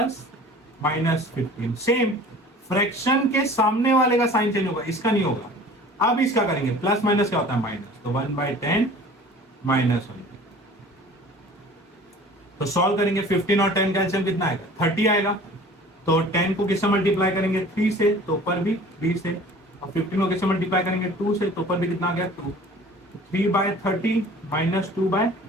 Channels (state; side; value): normal; both; correlation 0.45